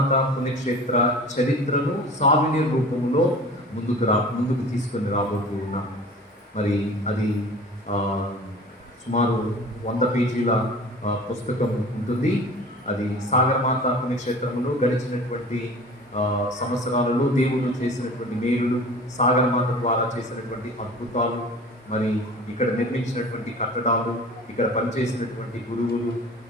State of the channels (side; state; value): both; normal; correlation 0.41